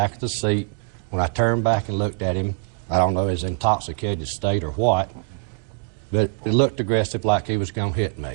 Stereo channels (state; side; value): quieter; left; 39.4 dB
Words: of the seat. When I turned back and looked at him, I don't know if he was in intoxicated state or what, but it looked aggressive like he was going to hit